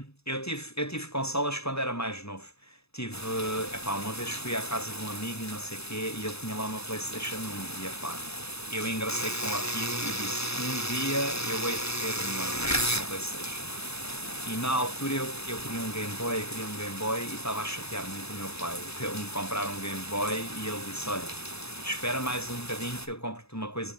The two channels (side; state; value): right; late; 0.79 ms